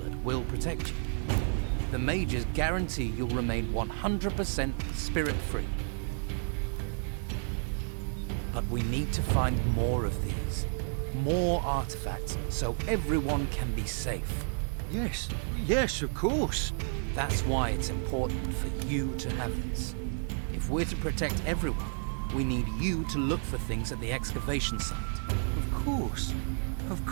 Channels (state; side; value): silent; left; 57 dB below the other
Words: will protect you. The mages guarantee you'll remain 100% spirit-free. But we need to find more of these. More artifacts, so everyone can be safe. Yes, yes, of course. That's why it's important for you to have this. If we're to protect everyone, we need you to look for things at the excavation site. Of course. Of